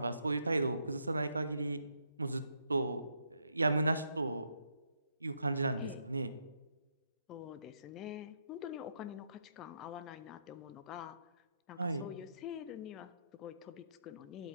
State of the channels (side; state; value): both; inverted; correlation -0.76